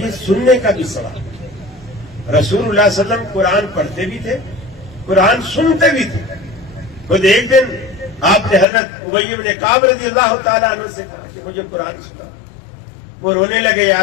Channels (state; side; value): drops out; right; at 8.7 s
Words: سننے کا بھی ثواب ہے۔ رسول اللہ صلی اللہ علیہ وسلم قرآن پڑھتے بھی تھے، قرآن سنتے بھی تھے۔ خود ایک دن آپ نے حضرت ابی بن کعب رضی اللہ تعالیٰ عنہ سے کہا کہ مجھے قرآن سنا۔ وہ رونے لگے، یا